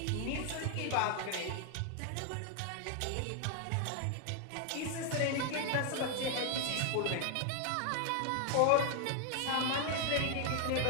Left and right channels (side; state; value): both; different; correlation 0.00